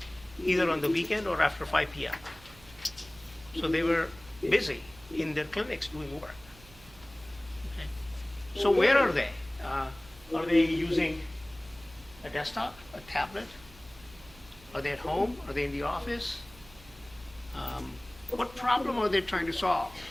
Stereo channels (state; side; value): noise; right; hum, 22 dB below the sound